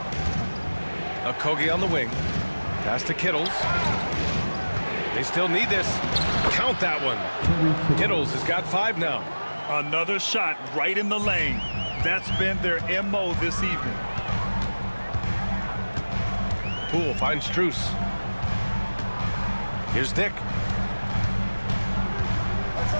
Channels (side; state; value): both; inverted; correlation -1.00